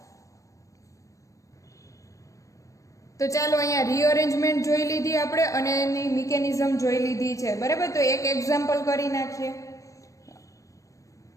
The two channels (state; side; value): late; right; 0.16 ms